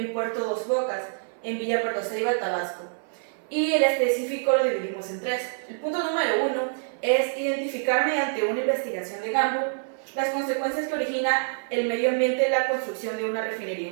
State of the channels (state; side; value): silent; left; 57 dB below the other